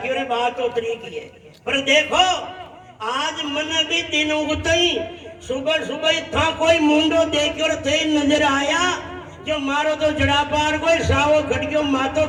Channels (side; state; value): both; identical; correlation 1.00